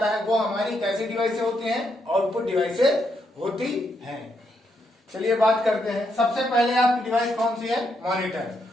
है वो हमारी कैसी डिवाइसेस होती हैं? आउटपुट डिवाइसेस होती हैं। चलिए बात करते हैं। सबसे पहले आपकी डिवाइस कौन सी है? मॉनिटर।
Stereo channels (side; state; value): both; normal; correlation 0.79